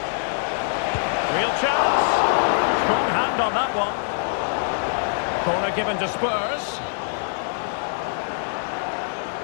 Real chance. Strong hand on that one. Corner given to Spurs.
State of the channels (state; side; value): silent; right; 63 dB below the other